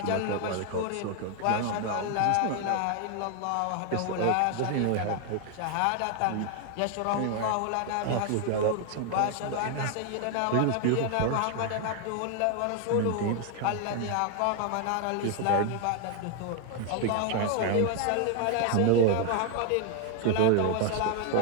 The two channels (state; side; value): different; both; correlation 0.00